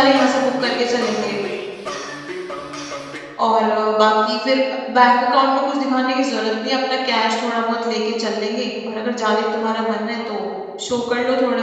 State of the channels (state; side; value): identical; both; correlation 1.00